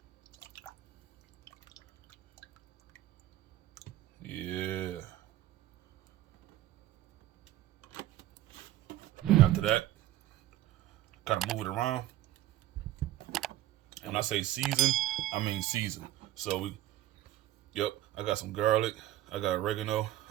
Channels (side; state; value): left; quieter; 14.2 dB